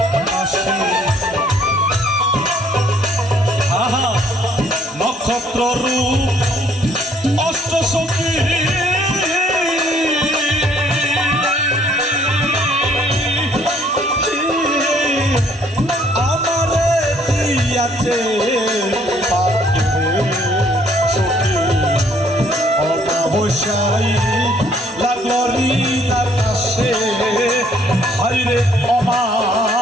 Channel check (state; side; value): normal; both; correlation 0.63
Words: আহা নক্ষত্র রূপ অষ্ট সখী আমারে দিয়াছে অমাবস্যায় লাগলো ঋণ আকাশে, হাইরে